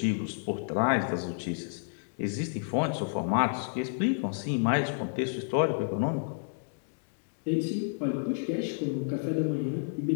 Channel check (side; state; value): right; silent; digital silence